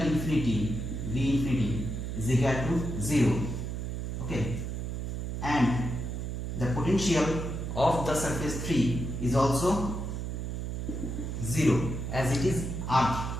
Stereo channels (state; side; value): noise; right; hum, 4 dB below the sound